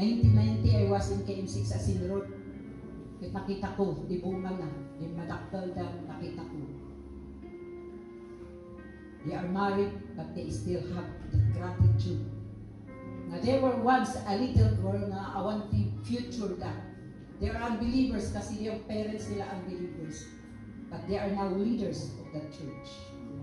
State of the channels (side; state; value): both; identical; correlation 1.00